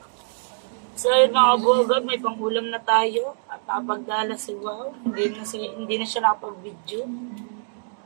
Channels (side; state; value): left; silent; digital silence